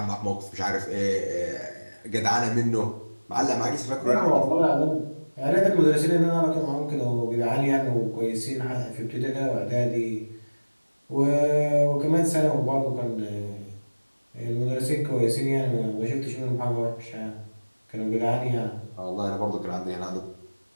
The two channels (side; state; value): both; inverted; correlation -1.00